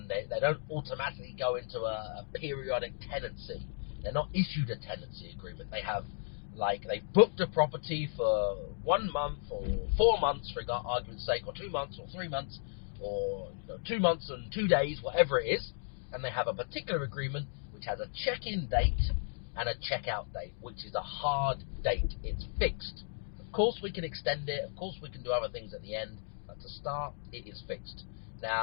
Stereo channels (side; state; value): right; silent; digital silence